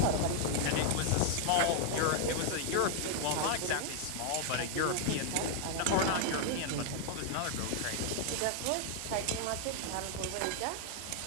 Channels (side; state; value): both; different; correlation 0.00